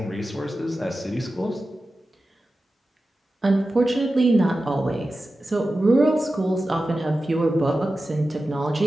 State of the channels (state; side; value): normal; both; correlation 0.94